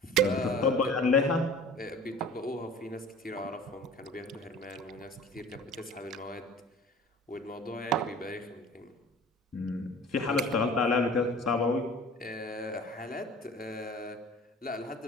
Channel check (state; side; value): normal; both; correlation 0.44